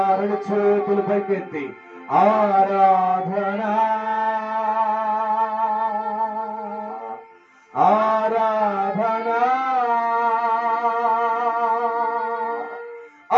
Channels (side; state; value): both; identical; correlation 1.00